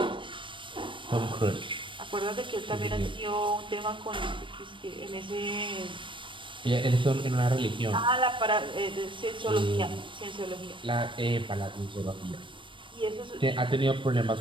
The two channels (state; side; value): late; left; 0.24 ms